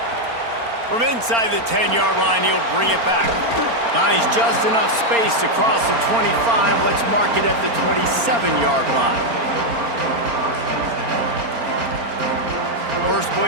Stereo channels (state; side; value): late; left; 4.3 ms